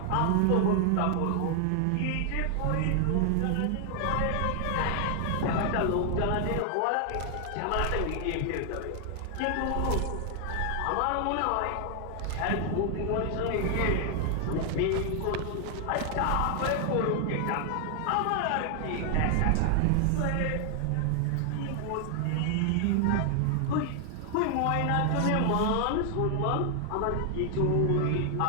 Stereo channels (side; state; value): both; different; correlation 0.00